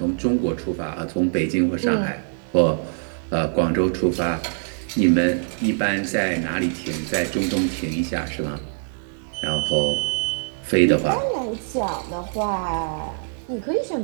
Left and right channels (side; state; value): left; silent; 63 dB below the other